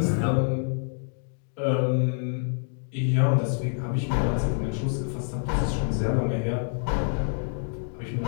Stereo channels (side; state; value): right; silent; digital silence